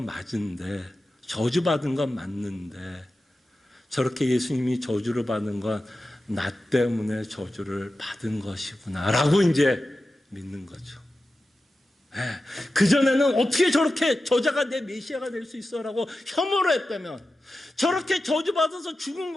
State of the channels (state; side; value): normal; both; correlation 0.93